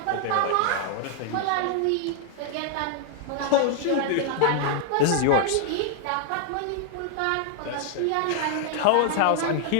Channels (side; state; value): both; different; correlation 0.00